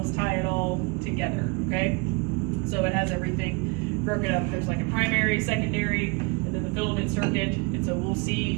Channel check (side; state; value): left; quieter; 29.2 dB